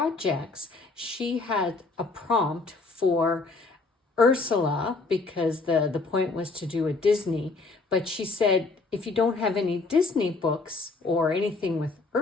she had a prompt for Ursula because the point was to do a Disney. But she said, if you don't have any Disney books or anything with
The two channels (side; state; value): right; quieter; 3.8 dB